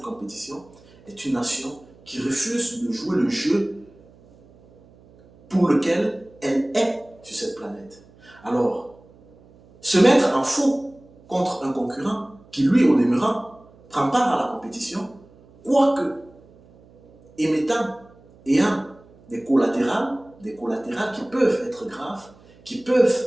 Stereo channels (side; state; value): right; noise; hum, 26 dB below the sound